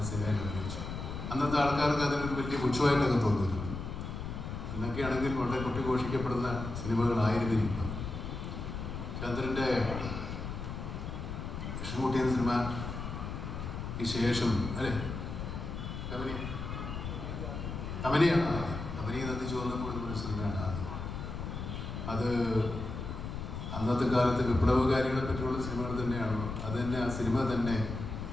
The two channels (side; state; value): left; noise; rumble, 6 dB below the sound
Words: സിനിമയിൽ അഭിനയിച്ചത്. അന്നത്തെ ആൾക്കാർക്ക് അതിനൊരു വലിയ പുച്ഛമായിട്ടൊക്കെ തോന്നിയിരുന്നു. എന്നൊക്കെയാണെങ്കിൽ വളരെ കൊട്ടിഘോഷിക്കപ്പെടുന്ന സിനിമകളായിരുന്നിരിക്കും. ചന്ദ്രൻ്റെ കൃഷ്ണൻകുട്ടി എന്ന സിനിമ ഈ ശേഷം കബനിയാണ് ആദ്യം. കബനി നന്ദി ചോർന്നപ്പോൾ ഒരു സിനിമയാണ് ആദ്യം. അത് അന്നത്തെ കാലത്ത് വിപ്ലവകാരികളെ പറ്റിയുള്ള സിനിമകൾ തന്നെയാണോ, അത് തന്നെ, ആ സിനിമ തന്നെ